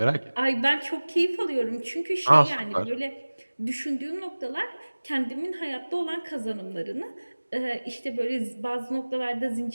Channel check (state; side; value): inverted; both; correlation -1.00